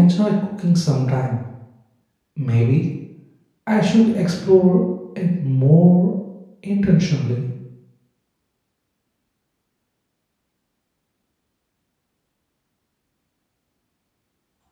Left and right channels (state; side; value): identical; both; correlation 1.00